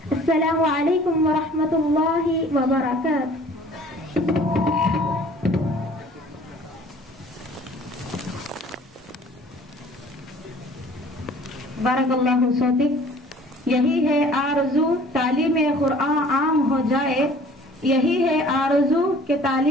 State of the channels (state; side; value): normal; both; correlation 0.51